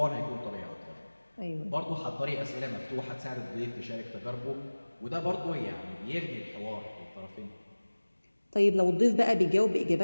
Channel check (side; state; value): both; inverted; correlation -1.00